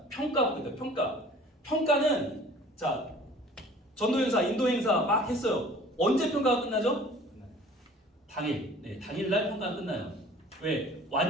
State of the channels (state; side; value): normal; both; correlation 0.49